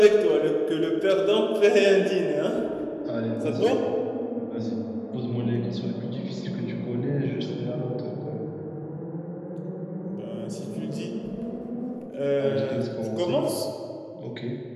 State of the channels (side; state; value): both; identical; correlation 1.00